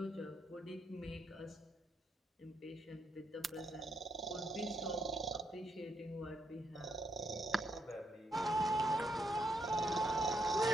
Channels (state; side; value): normal; both; correlation 0.77